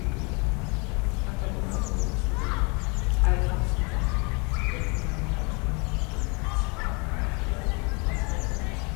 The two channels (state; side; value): quieter; right; 31.5 dB